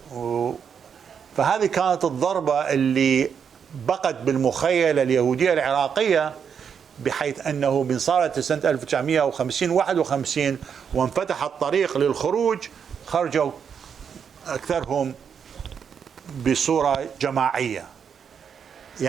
فهذه كانت الضربة اللي بقت بالمخيلة اليهودية العراقية، بحيث أنه من صارت سنة 1950-51 وانفتح الطريق للخروج، خرجوا أكثرهم بصورة جماعية.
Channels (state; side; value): quieter; left; 7.2 dB